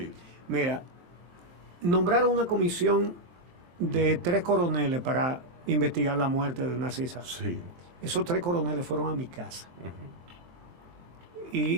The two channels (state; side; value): late; left; 23 ms